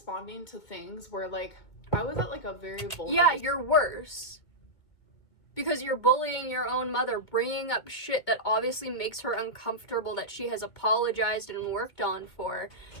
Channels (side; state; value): right; late; 2.2 ms